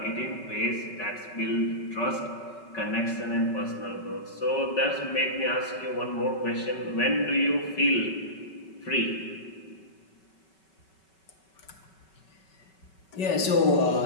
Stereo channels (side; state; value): right; late; 5.3 ms